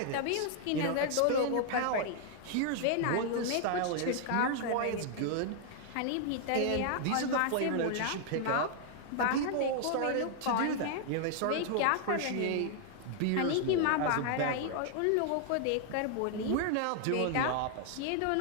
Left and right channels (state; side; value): different; both; correlation 0.00